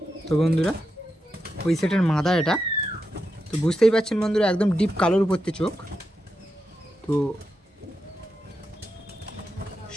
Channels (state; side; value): normal; both; correlation 0.87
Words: তো বন্ধুরা ওই সেটের মাদা এটা, তো বুঝতেই পারছেন বন্ধুরা একদম ডিপ কালোর উপর থেকে চোখ। তো